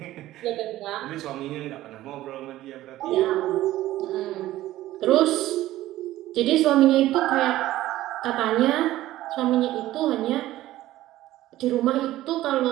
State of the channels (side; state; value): left; quieter; 15.2 dB